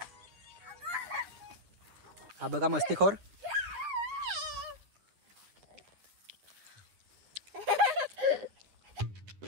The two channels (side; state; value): left; late; 10 ms